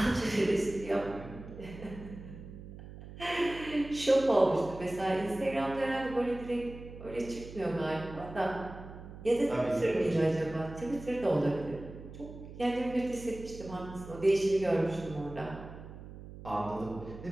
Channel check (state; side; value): noise; right; hum, 14 dB below the sound